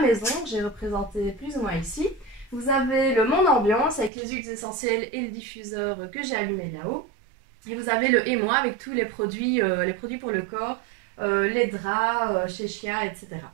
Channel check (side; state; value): left; drops out; at 4.1 s